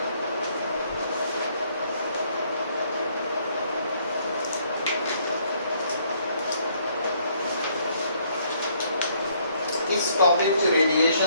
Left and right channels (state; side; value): inverted; both; correlation -0.67